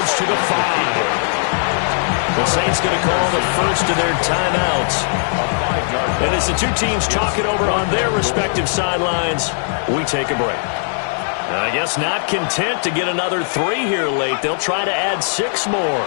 to the 5. The Saints going to call the first of their timeouts. And as the two teams talking over on their respective sidelines, we take a break. I guess not content to get another 3 here late. They'll try to add 6 more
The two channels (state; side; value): silent; right; 67 dB below the other